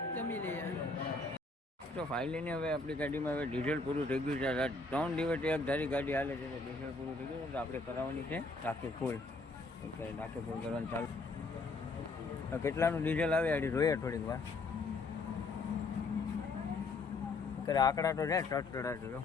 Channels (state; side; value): quieter; right; 3.6 dB